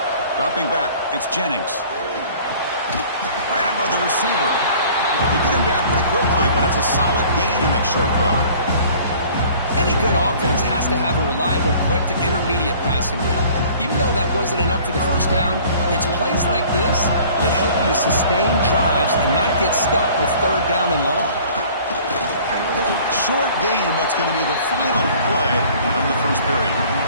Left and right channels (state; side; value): inverted; both; correlation -0.50